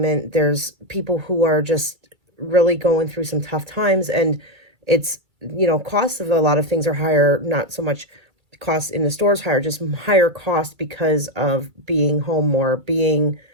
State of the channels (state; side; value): late; left; 2.3 ms